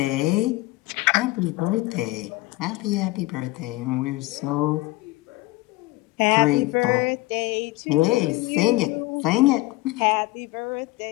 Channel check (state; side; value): quieter; right; 20.0 dB